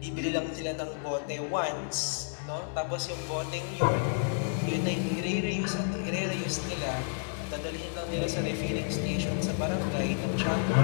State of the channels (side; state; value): right; silent; digital silence